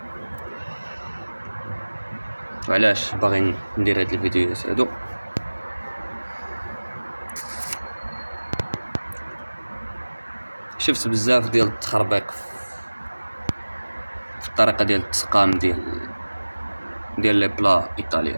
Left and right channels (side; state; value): both; inverted; correlation -1.00